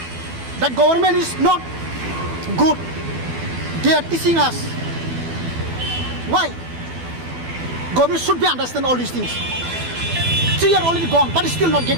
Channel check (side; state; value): left; late; 12 ms